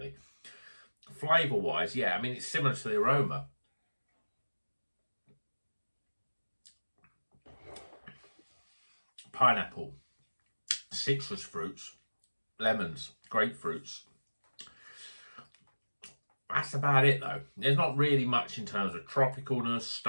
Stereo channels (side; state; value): both; inverted; correlation -1.00